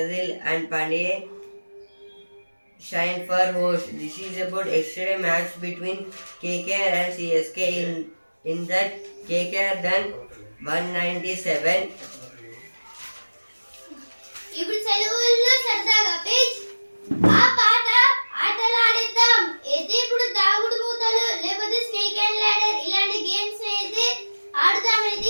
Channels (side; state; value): both; inverted; correlation -1.00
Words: and Pandey shine for host. This is about yesterday match between KKR and CSK. In that KKR done 197. ఇప్పుడు సెలవుల్లో సరదాగా పేజ్ ఆ పాట ఆటలు ఆడిద్దాం అయితే ఇప్పుడు దాగుడు మూతలు లేకపోతే స్నేక్ అండ్ ల్యాడర్ ఇలాంటి గేమ్స్ అయితే ఆడుదామైతే